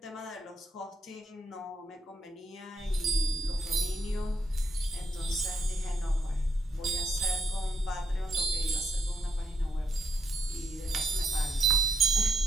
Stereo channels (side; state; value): both; normal; correlation 0.76